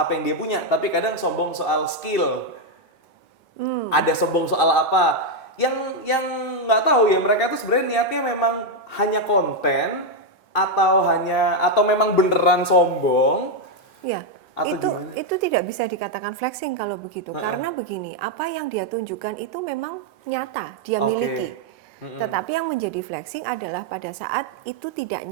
yang dia punya, tapi kadang sombong soal skill. Ada sombong soal apa? Yang nggak tahu ya, mereka tuh sebenarnya niatnya memang hanya konten atau memang beneran sombong. Ya, itu tidak bisa dikatakan flexing kalau begitu. Karena begini, apa yang dia tunjukkan itu memang nyata, dia miliki. Tetapi yang menjadi flexing adalah pada saat itu tidak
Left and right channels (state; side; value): normal; both; correlation 0.02